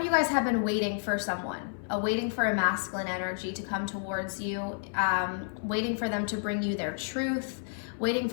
you guys have been waiting for someone, waiting for a masculine energy to come towards you, waiting for them to bring you their truth, waiting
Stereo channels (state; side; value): silent; right; 58 dB below the other